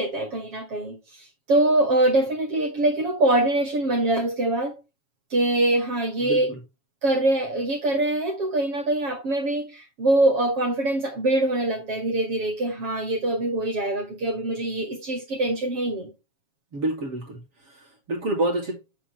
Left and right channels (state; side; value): late; left; 7.3 ms